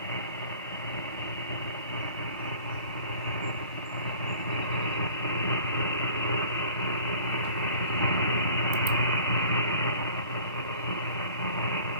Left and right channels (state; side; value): inverted; both; correlation -0.47